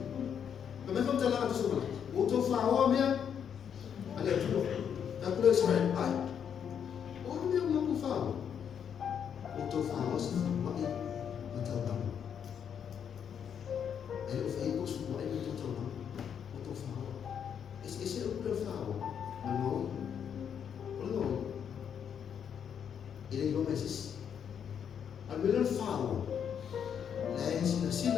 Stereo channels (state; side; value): quieter; right; 8.1 dB